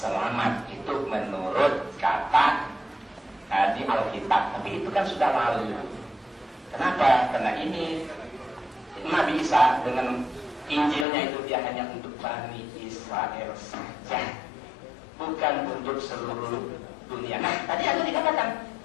Itu menurut kata di Alkitab. Tapi itu kan sudah lalu. Kenapa? Karena ini Nabi Isa dengan Injilnya itu dia hanya untuk Bani Israel saja, bukan untuk seluruh dunia. Nah, tadi ada dikatakan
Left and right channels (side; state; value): right; drops out; at 11.1 s